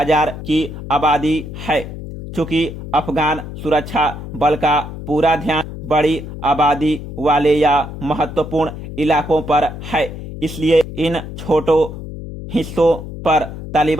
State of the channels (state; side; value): noise; left; hum, 10 dB below the sound